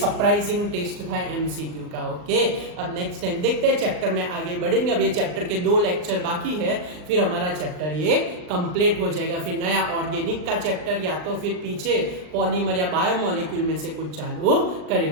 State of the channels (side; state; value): left; late; 39 ms